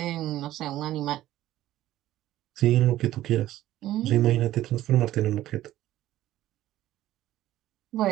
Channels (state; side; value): quieter; left; 14.2 dB